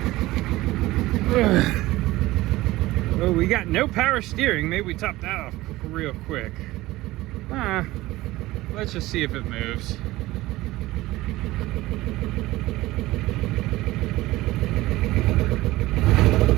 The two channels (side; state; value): left; quieter; 18.1 dB